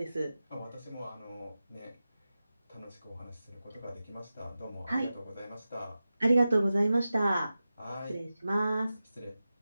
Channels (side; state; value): both; inverted; correlation -0.94